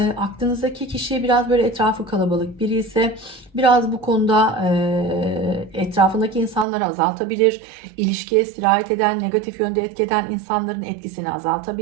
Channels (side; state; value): left; drops out; at 6.7 s